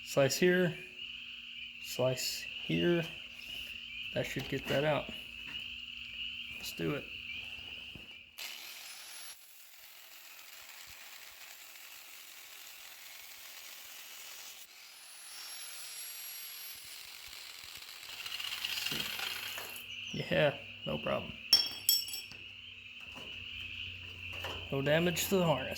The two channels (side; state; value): both; identical; correlation 1.00